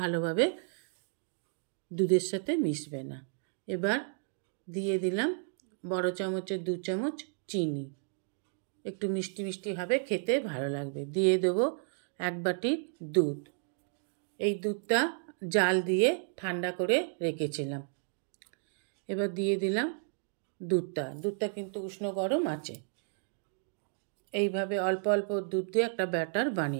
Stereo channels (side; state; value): left; silent; digital silence